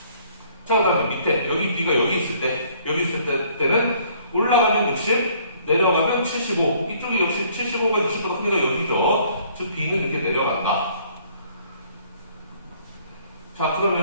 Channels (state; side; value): inverted; both; correlation -0.60